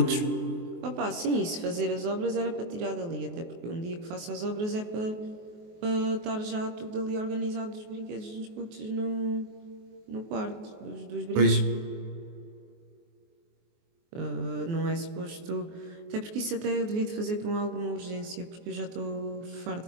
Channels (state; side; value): late; left; 24 ms